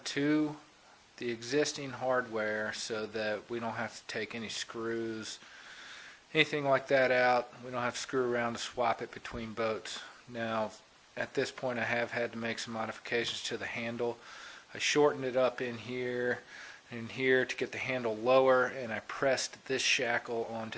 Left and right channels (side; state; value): both; identical; correlation 1.00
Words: to the existing hardware so that we don't have to take any screws, anything like that out. We don't have to screw around to swap it between boats. Now, at this point I have had to make some modifications to the handle. I shortened it up in here and here to get the handle lower, and I pressed this shackle